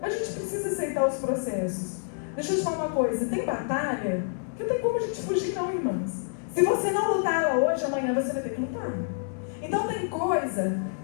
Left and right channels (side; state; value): right; silent; digital silence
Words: gente precisa aceitar os processos. Deixa eu te falar uma coisa, tem batalha que não tem como a gente fugir não, irmãs. Se você não lutar ela hoje, amanhã você vai ter que lutar. Então tem coisa